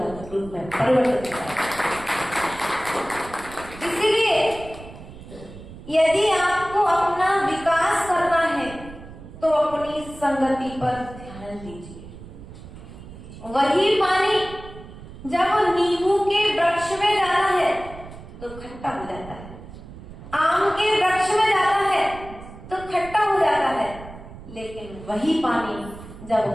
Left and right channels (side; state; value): right; noise; rumble, 15 dB below the sound